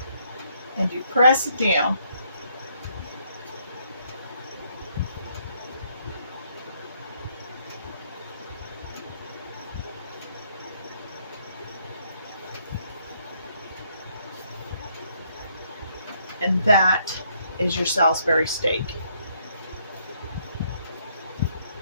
and you press it down. And that is your Salisbury steak.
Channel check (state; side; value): inverted; both; correlation -0.70